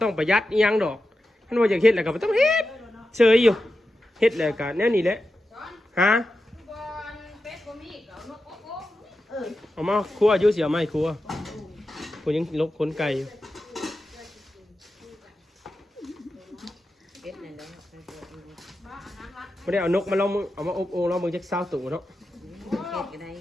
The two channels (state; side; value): normal; both; correlation 0.91